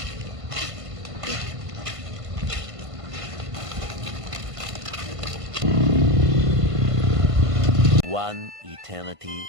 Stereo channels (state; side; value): late; left; 1.5 ms